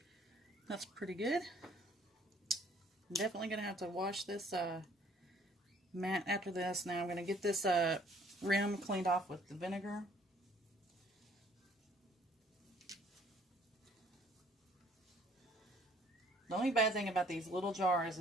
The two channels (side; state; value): both; normal; correlation 0.59